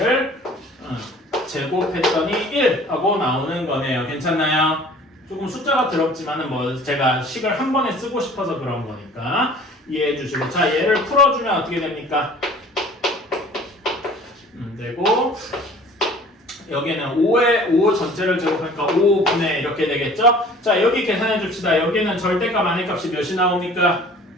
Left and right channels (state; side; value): normal; both; correlation 0.48